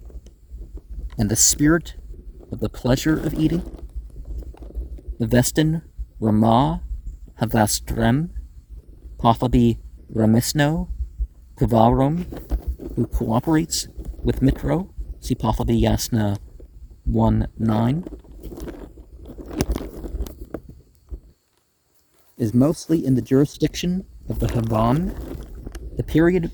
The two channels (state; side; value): identical; both; correlation 1.00